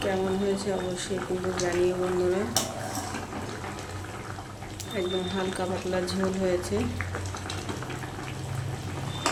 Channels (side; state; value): both; identical; correlation 1.00